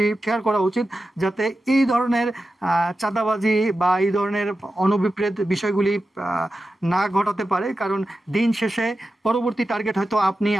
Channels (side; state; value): both; normal; correlation 0.92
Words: শেয়ার করা উচিত, যাতে এই ধরনের চাঁদাবাজি বা এই ধরনের অনভিপ্রেত বিষয়গুলি না ঘটাতে পারে। কারণ দিন শেষে পরবর্তী টার্গেট হয়তো আপনি,